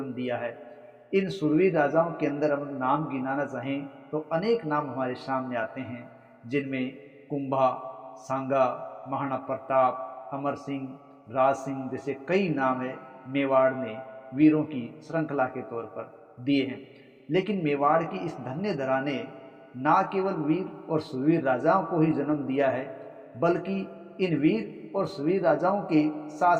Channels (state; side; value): identical; both; correlation 1.00